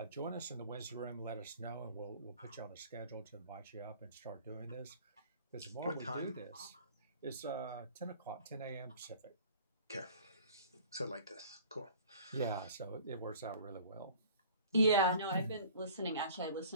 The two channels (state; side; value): inverted; both; correlation -0.48